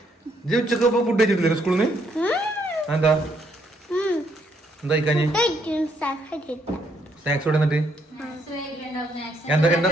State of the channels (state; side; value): normal; both; correlation 0.72